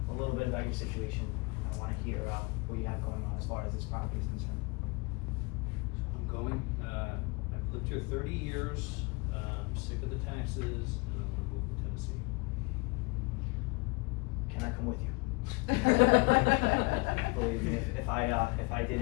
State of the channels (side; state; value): right; quieter; 26.9 dB